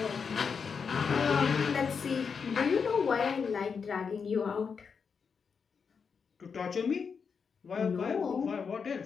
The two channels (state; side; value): quieter; right; 5.9 dB